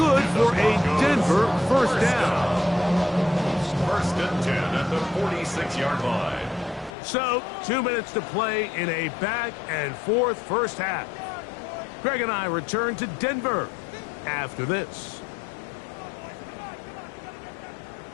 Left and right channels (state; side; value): drops out; right; at 6.9 s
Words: for a Denver first down. First and 10 at the 46-yard line. So, 2 minutes to play in a back-and-forth first half. Greg and I return to Denver after this.